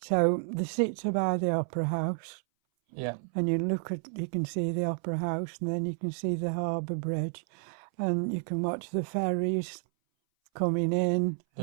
So the seats are by the Opera House. Yeah. And you can see the Opera House, and then you can see the Harbour Bridge, and you can watch the ferries coming in.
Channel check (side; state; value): left; silent; 57 dB below the other